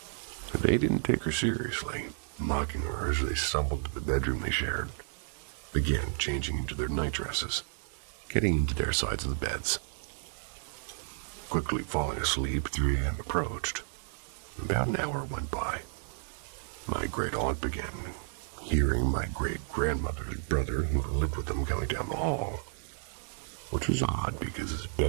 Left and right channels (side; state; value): left; silent; digital silence